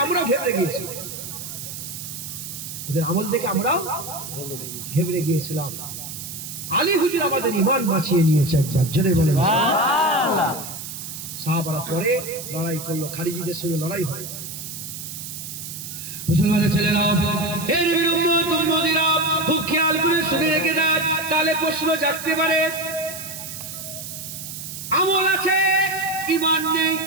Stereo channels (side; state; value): right; noise; hiss, 9 dB below the sound